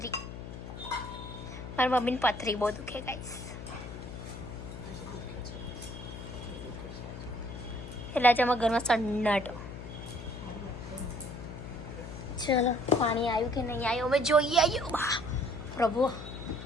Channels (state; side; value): noise; left; hum, 10 dB below the sound